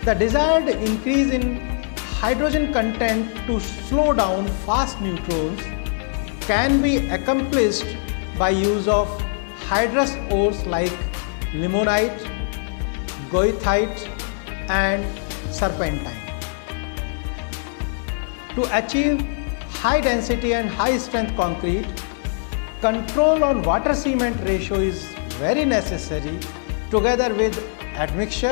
The desired increase in hydrogen content to slow down fast neutrons can be accomplished by use of hydrous ores like limonite, goethite and serpentine. To achieve high density and high strength concrete, control on water cement ratio is very necessary together with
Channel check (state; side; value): silent; right; digital silence